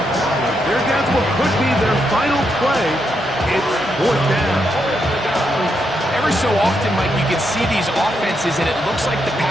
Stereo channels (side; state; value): both; normal; correlation 0.81